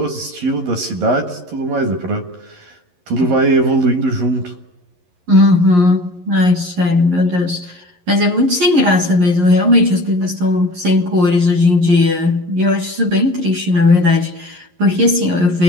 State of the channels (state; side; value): late; left; 11 ms